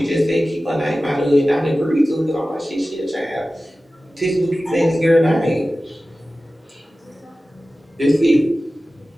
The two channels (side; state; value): both; normal; correlation 0.96